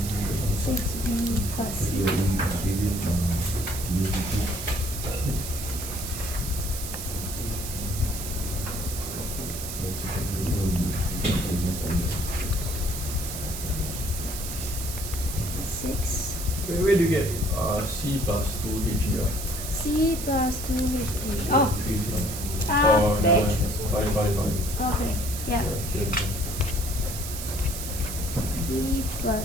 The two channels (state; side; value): noise; right; hiss, 7 dB below the sound